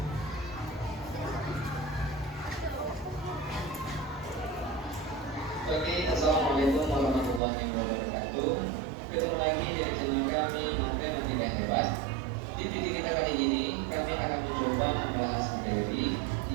Oke, assalamualaikum warahmatullahi wabarakatuh. Ketemu lagi di channel kami Matematika Hebat. Di video kita kali ini kami akan mencoba membahas materi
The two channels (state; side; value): drops out; left; at 7.4 s